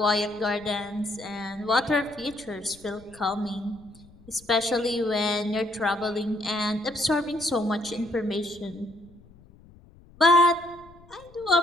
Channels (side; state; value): left; noise; rumble, 25 dB below the sound